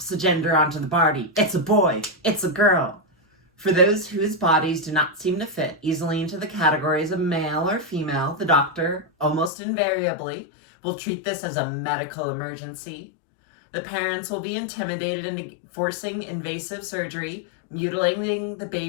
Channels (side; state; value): right; drops out; at 9.5 s